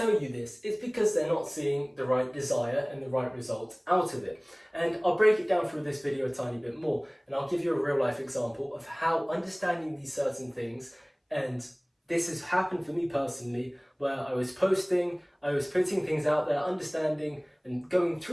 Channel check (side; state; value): both; identical; correlation 1.00